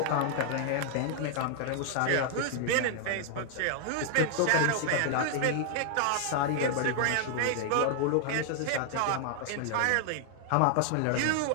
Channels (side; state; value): both; different; correlation 0.00